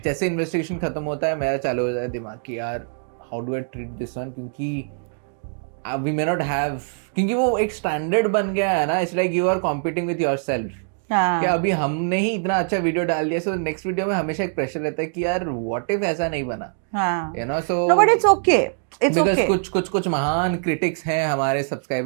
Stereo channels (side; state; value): left; silent; digital silence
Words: जैसे investigation खत्म होता है, मेरा चालू हो जाता है दिमाग कि यार how do I treat this one, क्योंकि we may not have, क्योंकि वो एक standard बन गया है ना, it's like you are competing with yourself. कि अभी हमने ही इतना अच्छा वीडियो डाल दिया, so नेक्स्ट वीडियो में हमेशा एक प्रेशर रहता है कि यार what if ऐसा नहीं बना, you know, so no, but it's okay, because कुछ महान क्रिटिक्स हैं हमारे